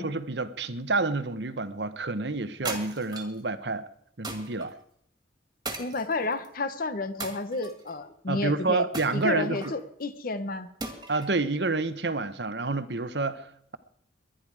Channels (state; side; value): normal; both; correlation 0.05